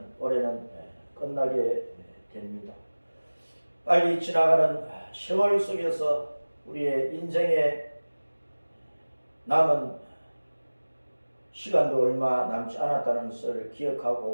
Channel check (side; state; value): both; inverted; correlation -1.00